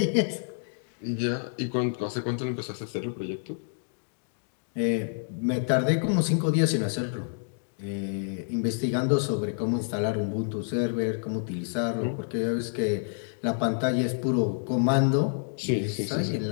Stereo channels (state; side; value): silent; right; digital silence